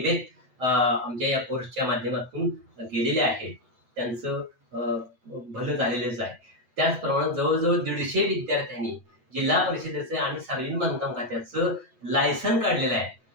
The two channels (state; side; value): late; left; 8.0 ms